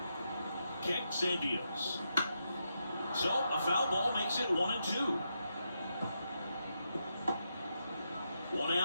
Kicks and deals. So a foul ball makes it 1-2. One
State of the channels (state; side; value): inverted; both; correlation -0.83